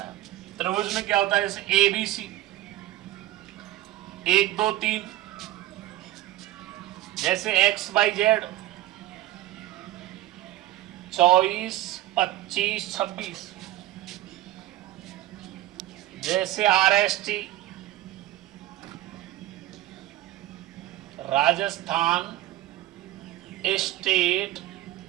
है। त्रिभुज में क्या होता है जैसे ए बी सी 1 2 3, जैसे एक्स वाई जेड 24 25 26, जैसे are S T Rajasthan state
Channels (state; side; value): quieter; left; 15.2 dB